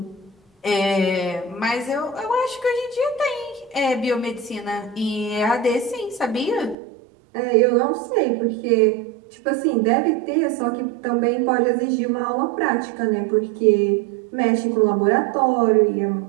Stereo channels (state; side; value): drops out; left; at 6.8 s